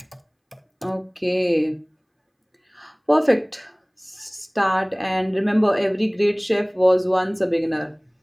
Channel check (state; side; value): identical; both; correlation 1.00